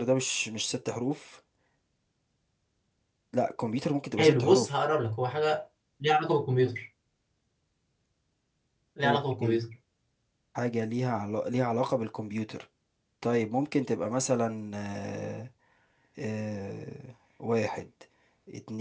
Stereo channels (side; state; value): both; identical; correlation 1.00